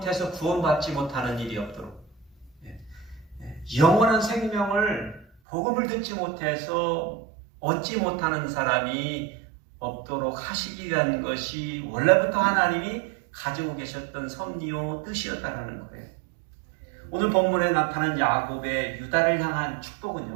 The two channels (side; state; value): left; drops out; at 5.2 s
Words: 구원받지 못하는 일이 없도록, 영원한 생명을 복음을 듣지 못해서 얻지 못하는 사람이 없도록 하시기 위한 것이 원래부터 하나님이 가지고 계셨던 섭리요 뜻이었다는 거예요. 오늘 본문에 나타난 야곱의 유다를 향한